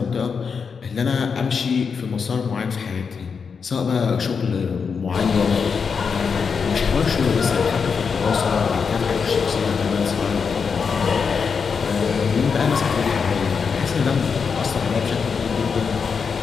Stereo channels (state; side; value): quieter; right; 5.8 dB